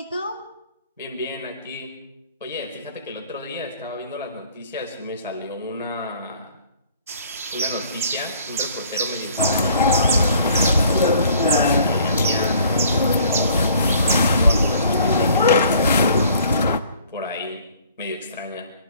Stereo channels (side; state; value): both; inverted; correlation -0.56